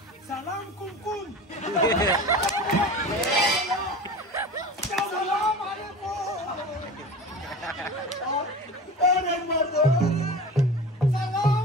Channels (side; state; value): both; normal; correlation 0.34